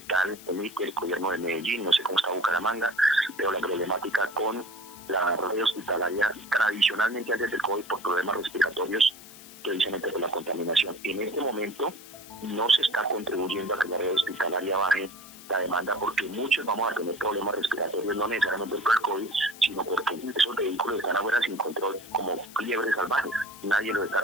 emite, el gobierno de Medellín, no sé cómo está Bucaramanga, pero la problemática con la red hospitalaria tradicionalmente antes del COVID por problemas respiratorios, precisamente por la contaminación. En este momento no se está contribuyendo a que la red hospitalaria baje la demanda, porque muchos vamos a tener problemas respiratorios, no necesariamente por el COVID, sino porque esos vehículos están afuera sin control, como liebres salvajes. Nadie los está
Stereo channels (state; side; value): noise; left; hiss, 18 dB below the sound